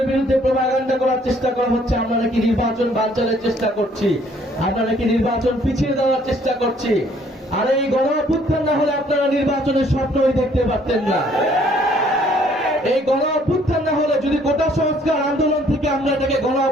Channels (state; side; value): normal; both; correlation 0.62